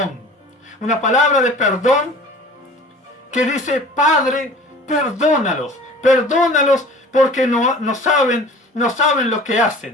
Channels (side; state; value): both; normal; correlation 0.44